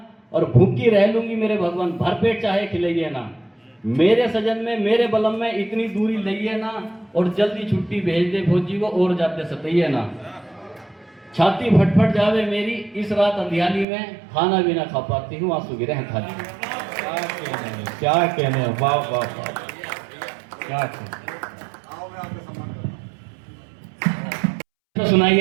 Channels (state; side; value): drops out; left; at 13.9 s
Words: और भूखी रह लूंगी मेरे भगवान, भरपेट चाहे खिलाइए ना। मेरे सजन में मेरे बलम में इतनी दूरी लइए ना, और जल्दी छुट्टी भेज दे फौजी को और जाते सतइए ना। छाती फटफट जावे मेरी इस रात अंधियाली में, खाना भी ना खा पाती हूँ आंसू गिरे हैं थाली में। क्या कहने, वाह वाह वाह, क्या कहने। तो सुनाई